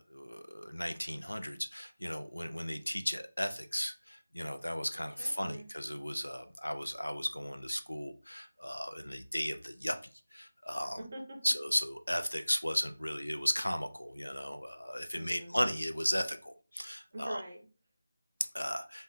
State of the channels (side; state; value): both; inverted; correlation -0.99